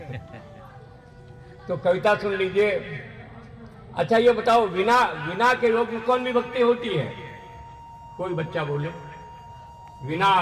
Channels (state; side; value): identical; both; correlation 1.00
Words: तो कविता सुन लीजिए। अच्छा ये बताओ, विना के योग में कौन विभक्ति होती है? कोई बच्चा बोले। विना